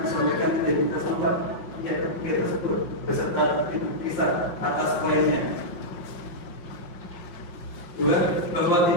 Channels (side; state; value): right; late; 5.6 ms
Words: identitas lengkap pihak tersebut beserta bukti sah atas kliennya. Dua, bahwa